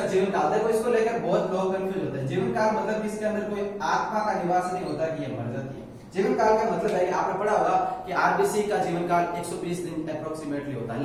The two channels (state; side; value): identical; both; correlation 1.00